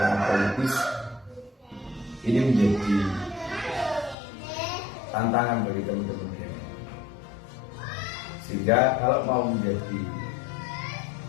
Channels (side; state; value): right; drops out; at 4.2 s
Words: politis, ini menjadi tantangan bagi teman-teman ini. Sehingga kalau mau menjadi